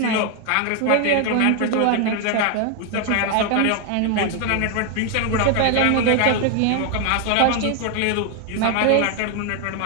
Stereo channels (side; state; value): both; different; correlation 0.01